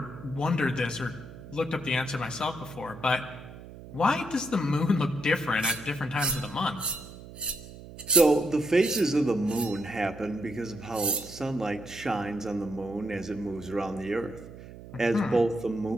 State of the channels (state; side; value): noise; right; hum, 15 dB below the sound